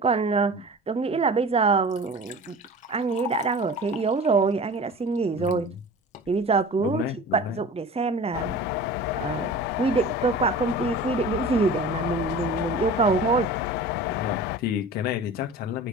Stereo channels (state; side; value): normal; both; correlation 0.38